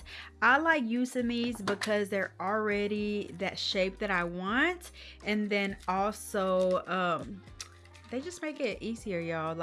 I like using these because they're already that shape that I want, and then also they just make it easier, y'all.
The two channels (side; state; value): both; identical; correlation 1.00